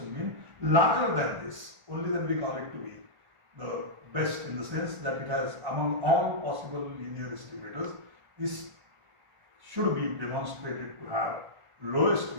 mean larger than this, only then we call it to be the best, in the sense that it has, among all possible linear estimators, this should be demonstrated to have lowest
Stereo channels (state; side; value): late; left; 1.4 ms